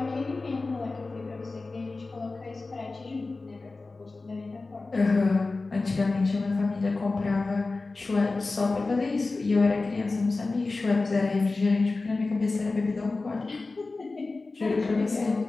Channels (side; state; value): right; quieter; 3.6 dB